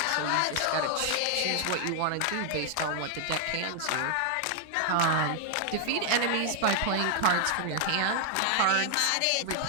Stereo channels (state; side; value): different; both; correlation 0.00